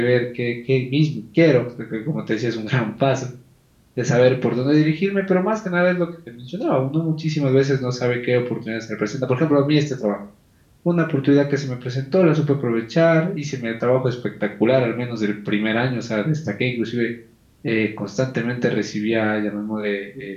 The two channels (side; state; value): both; identical; correlation 1.00